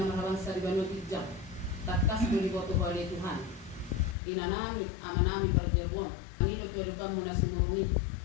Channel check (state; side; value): drops out; right; at 4.2 s